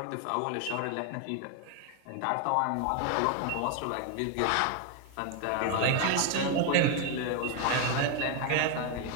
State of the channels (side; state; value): both; different; correlation 0.01